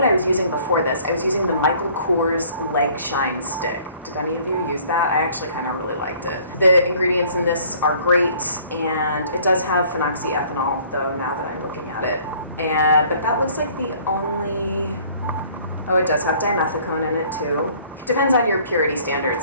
I was using before this? I was using the Michael Kors Leg Shine Stick. Did any of you use that? I actually kind of really liked it. The ingredients in this are great, and it does have phenoxyethanol though, now that I'm looking at it. But that looks like the only, oh, it does have dimethicone in it too. Depends on your purity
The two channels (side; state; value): both; inverted; correlation -0.56